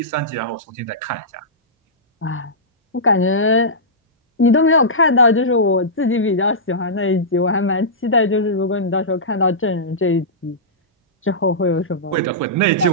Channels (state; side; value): normal; both; correlation -0.16